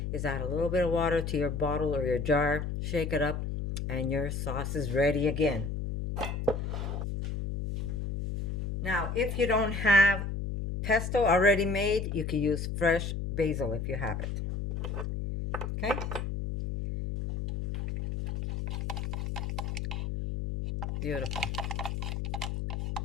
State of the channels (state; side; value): noise; left; hum, 3 dB below the sound